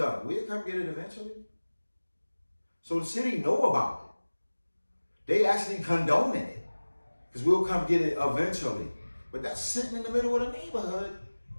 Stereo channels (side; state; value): both; inverted; correlation -1.00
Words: we'll come get it eventually. So the city know about it. They actually condoning it. Because we'll come get it eventually. But that's sitting in the middle of the neighborhood.